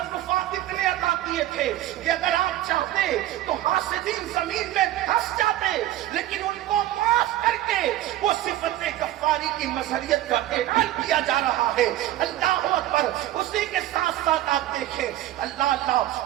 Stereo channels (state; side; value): quieter; left; 14.1 dB